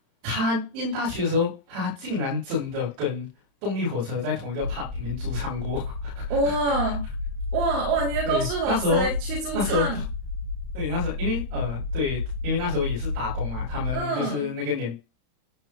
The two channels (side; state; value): left; late; 35 ms